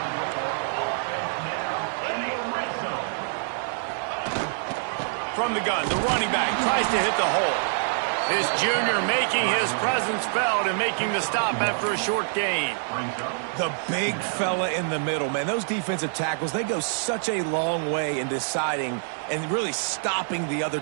From the gun, the running back tries to hit the hole. This junior making his presence felt and making the stop after a short gain. The big fella in the middle, man. Those defensive tackles, they go such a long way in deciding and really stopping the other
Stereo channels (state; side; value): silent; left; digital silence